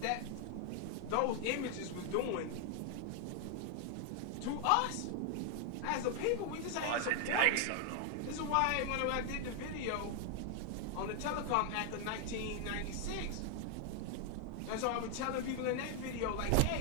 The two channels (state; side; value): different; both; correlation 0.00